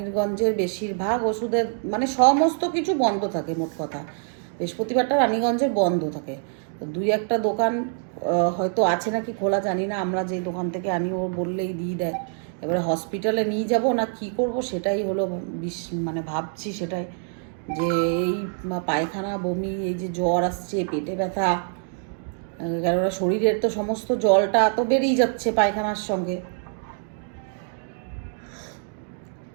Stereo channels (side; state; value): left; silent; 59 dB below the other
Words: বেশিরভাগ ওষুধের, মানে সমস্ত কিছু বন্ধ থাকে। মোট কথা বৃহস্পতিবারটা রানীগঞ্জের বন্ধ থাকে। তো 2-1টা দোকান হয়তো আছে নাকি খোলা, জানি না। আমরা যে দোকান থেকে আনি ও বললেই দিয়ে দেয়। এবারে হসপিটালে নিয়ে যাব না কি করব সেটাই হলো মানে ভাবছি সেটাই, যে এই পায়খানা বমি, এই যে জ্বর আসছে, পেটে ব্যথা, কেননা শরীরের তো সমস্ত জলটা তো বেরিয়ে যাচ্ছে পায়খানার সঙ্গে।